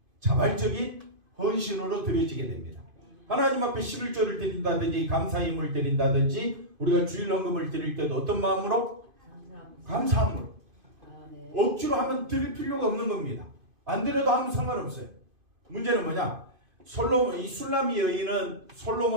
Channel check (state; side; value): late; left; 2.5 ms